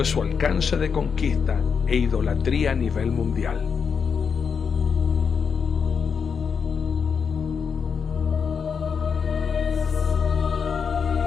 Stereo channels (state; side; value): quieter; right; 6.2 dB